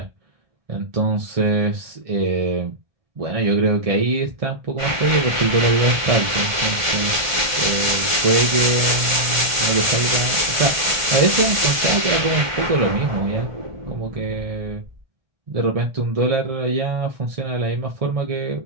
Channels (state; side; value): late; left; 1.4 ms